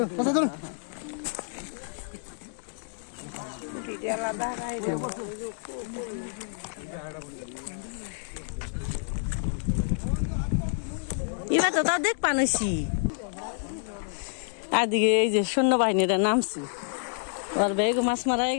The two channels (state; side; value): silent; right; digital silence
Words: এবার তো তাও দেখ পানছি। আর দিকে এই যে সৈন্যবাহিনীরা নামছি, ওর বেগ মাছ মারা হয়ে